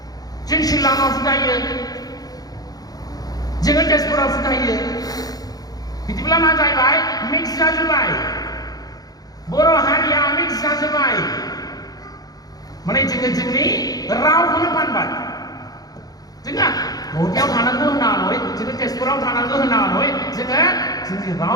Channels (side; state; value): right; late; 0.18 ms